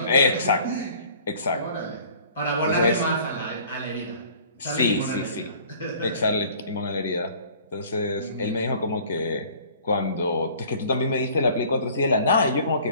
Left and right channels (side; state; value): both; inverted; correlation -0.51